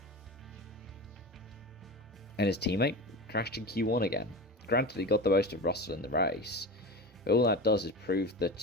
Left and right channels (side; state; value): both; normal; correlation 0.28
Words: And his teammate crashed in Q1 again. Granted, he got the most of Russell in the race, but all that does is prove